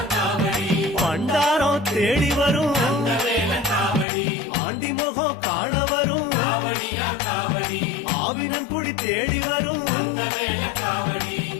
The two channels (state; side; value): drops out; right; at 4.0 s